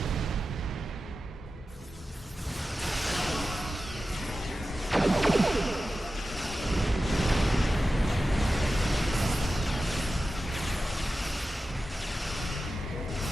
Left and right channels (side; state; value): both; normal; correlation 0.93